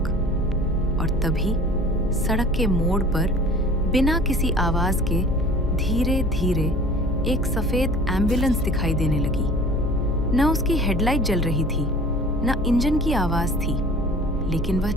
और तभी सड़क के मोड़ पर बिना किसी आवाज के धीरे धीरे एक सफेद एम्बुलेंस दिखाई देने लगी। न उसकी हेडलाइट जल रही थी, न इंजन की आवाज थी, लेकिन वह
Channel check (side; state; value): both; normal; correlation 0.45